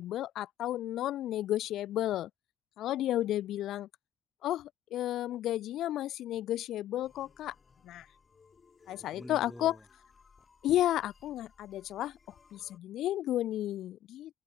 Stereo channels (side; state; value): right; quieter; 12.8 dB